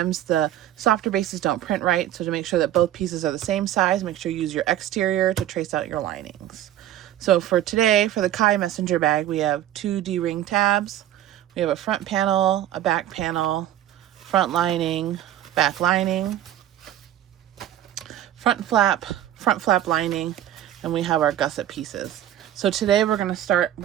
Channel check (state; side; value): quieter; left; 12.2 dB